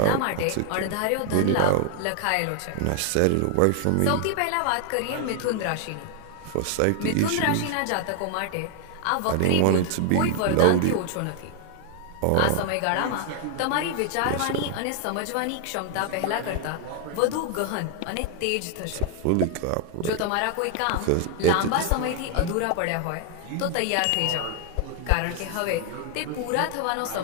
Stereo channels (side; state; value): both; different; correlation 0.00